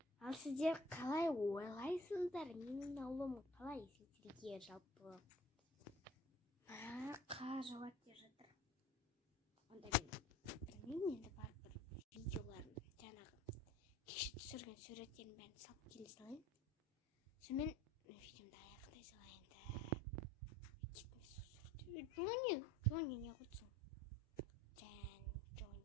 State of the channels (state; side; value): normal; both; correlation 0.47